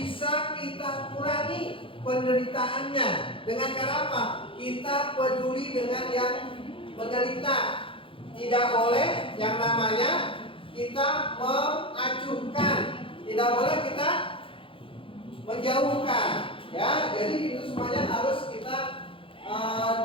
kita kurangi penderitaannya dengan cara apa? Kita peduli dengan yang menderita. Tidak boleh yang namanya kita mengacuhkan, tidak boleh kita menjauhkan. Ya, jadi itu semuanya harus kita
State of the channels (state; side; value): late; right; 0.26 ms